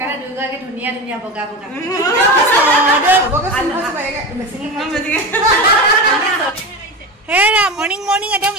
দুয়োগৰাকী ধুনীয়া ধুনীয়া বগা বগা হেৰা মৰ্ণিং মৰ্ণিং একদম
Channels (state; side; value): normal; both; correlation 0.25